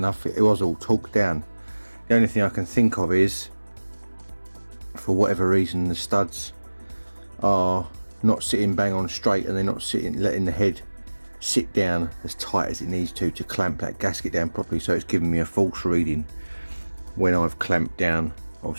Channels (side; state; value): both; inverted; correlation -1.00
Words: It was all torqued down. The only thing I can think of is, for whatever reason, the studs are not sitting bang on straight and they're not letting the head sit down as tight as it needs to clamp that gasket down properly, so it's giving me a false reading when I've clamped down,